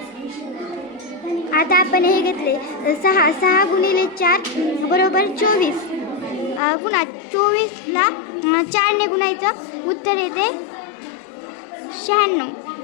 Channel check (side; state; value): right; drops out; at 6.6 s